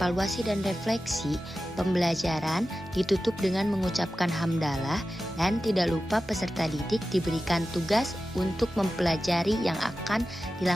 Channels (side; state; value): both; normal; correlation 0.94